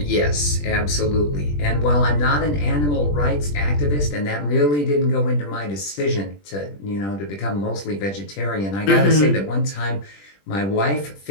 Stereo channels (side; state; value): right; late; 20 ms